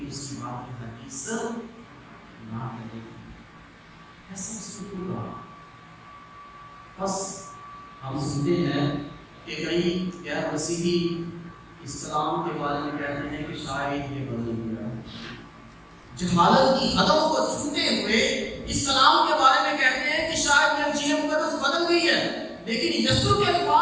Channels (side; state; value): both; identical; correlation 1.00